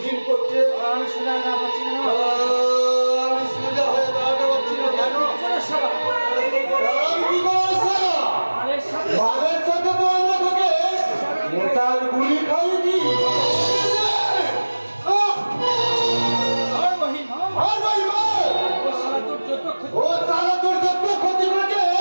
করছে? আমি সোজা না পাচ্ছি না আমি সোজা হয়ে দাঁড়াতে পারছি না কেন? আমি কি করবো? আরে সাথে বাঘের সাথে তো আমরা তোকে নেতার গুলি খাইছি। আর মহিম আর ভাই ভাই, ও সারা তোর যত ক্ষতি ও সারা তোর যত ক্ষতি করেছে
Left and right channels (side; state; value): both; inverted; correlation -1.00